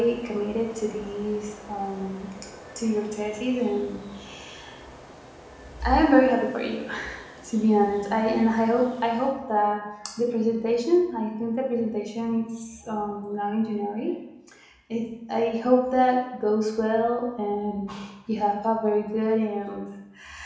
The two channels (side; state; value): both; identical; correlation 1.00